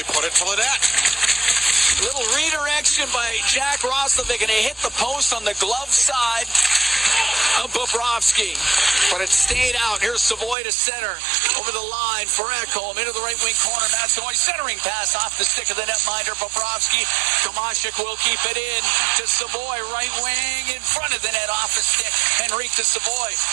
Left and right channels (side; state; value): left; drops out; at 10.6 s